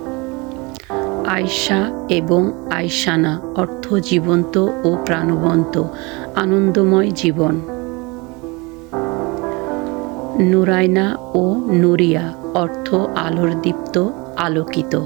আয়শা এবং আয়শানা অর্থ জীবন্ত ও প্রাণবন্ত, আনন্দময় জীবন। নুরাইনা ও নুরিয়া অর্থ আলোর দীপ্ত, আলোকিত।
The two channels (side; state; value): left; quieter; 26.7 dB